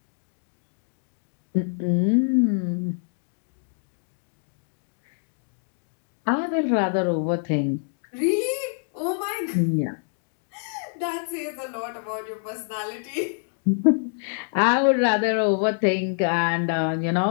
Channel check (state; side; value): silent; right; digital silence